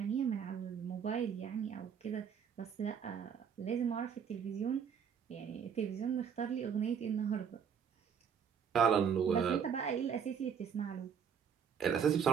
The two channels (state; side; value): quieter; left; 7.3 dB